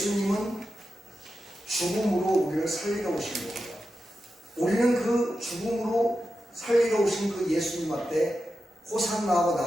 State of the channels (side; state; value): both; normal; correlation 0.90